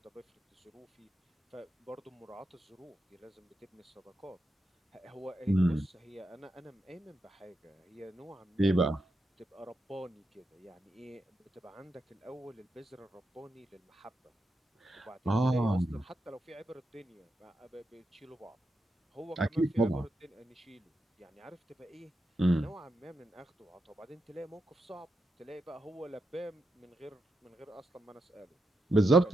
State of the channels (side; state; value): both; normal; correlation 0.85